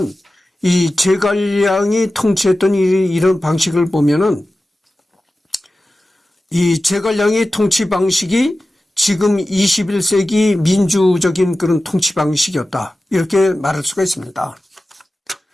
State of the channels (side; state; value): both; normal; correlation 0.95